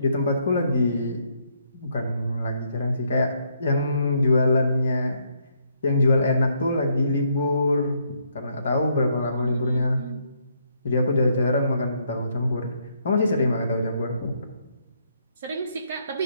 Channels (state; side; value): inverted; both; correlation -0.73